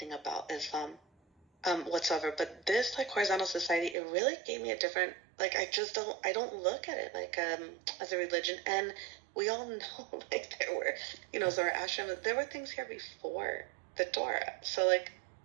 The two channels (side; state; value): left; drops out; at 4.0 s